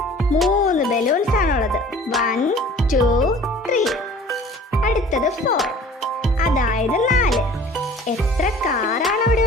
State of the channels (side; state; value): both; normal; correlation 0.47